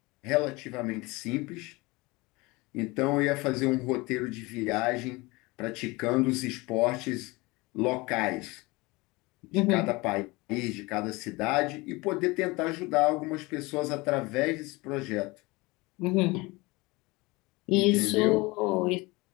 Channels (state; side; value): quieter; right; 23.5 dB